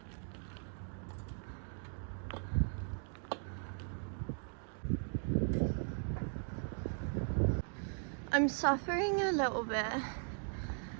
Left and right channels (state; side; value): silent; left; 52 dB below the other